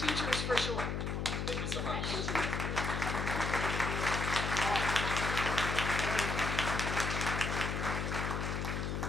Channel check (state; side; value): noise; left; hum, 1 dB below the sound